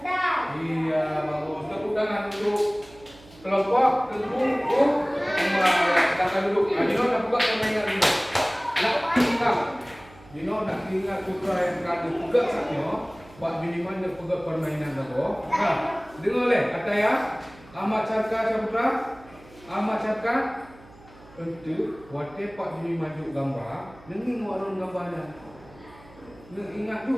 Iya, bagus. Tepuk tangan untuk kelompok tengkung silakan duduk. Dino nak buka permainan dulu. Dino nak ingat putra yang kado juga saknya. Buat minimal dia pegang permainan dulu. Dengar leh kata ya. Amat Carka putra. Amat Carka untuk buat pak bini maju gambar. Nengi warun gambarnya. Ingat tu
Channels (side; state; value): right; noise; hum, 23 dB below the sound